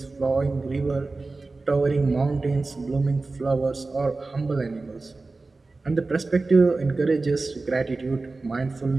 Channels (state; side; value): quieter; left; 3.5 dB